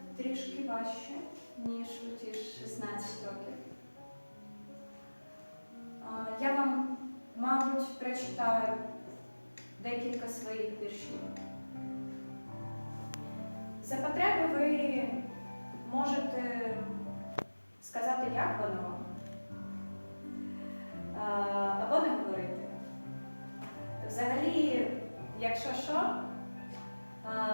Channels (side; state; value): both; inverted; correlation -1.00